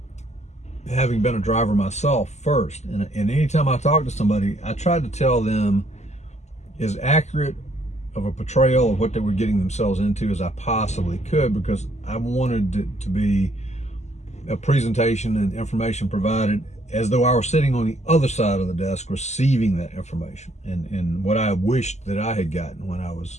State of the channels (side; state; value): right; late; 0.33 ms